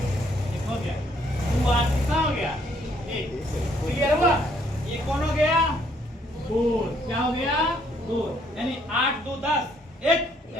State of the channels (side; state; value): both; normal; correlation 0.67